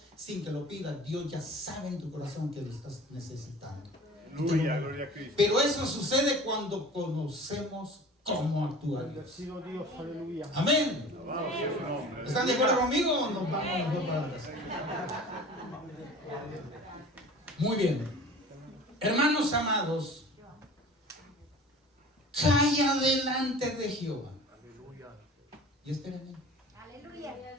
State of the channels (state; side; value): normal; both; correlation 0.41